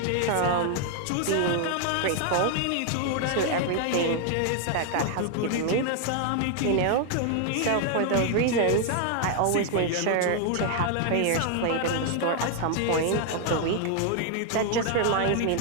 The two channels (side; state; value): both; different; correlation 0.00